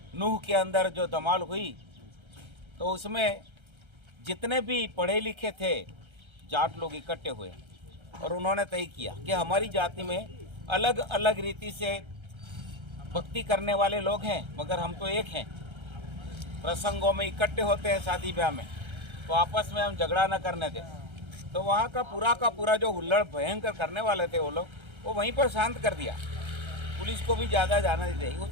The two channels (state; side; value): late; left; 1.3 ms